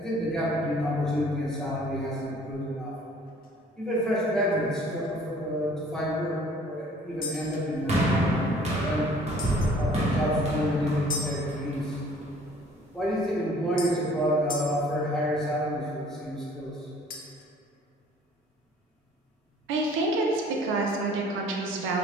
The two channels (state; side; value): normal; both; correlation 0.54